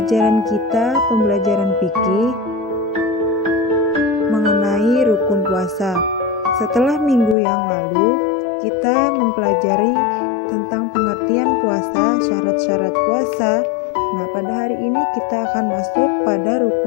fikih mengenai rukun puasa. Setelah minggu yang lalu kita mempelajari tentang pengertian puasa, syarat-syarat puasa. Nah, pada hari ini kita akan masuk pada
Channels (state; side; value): drops out; right; at 7.4 s